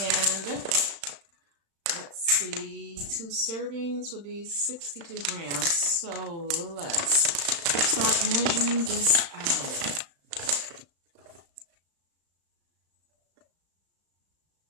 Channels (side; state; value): left; late; 35 ms